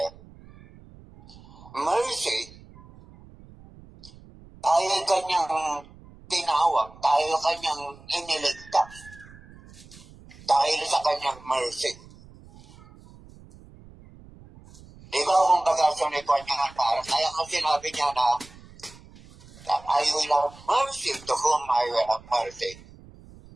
Mercy, tayo kanyang tinawag, tayo kanyang iniligtas, dahil sa kanyang mercy. Di ba kung bagasyon ito niya, parang kaya kasi sinabi niya na I will have mercy to whom I will have mercy.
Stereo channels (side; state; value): right; noise; rumble, 22 dB below the sound